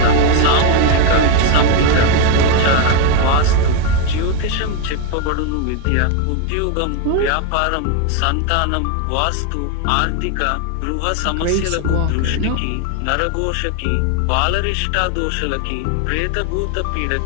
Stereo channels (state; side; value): different; both; correlation 0.01